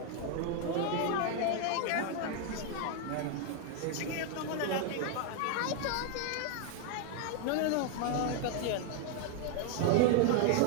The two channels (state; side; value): different; both; correlation 0.01